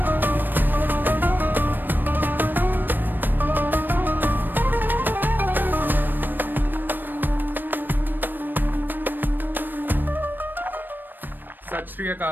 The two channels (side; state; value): left; late; 0.092 ms